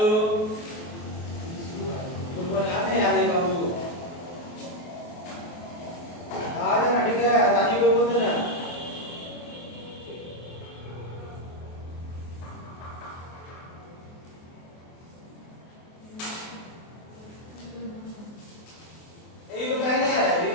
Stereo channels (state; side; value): late; right; 23 ms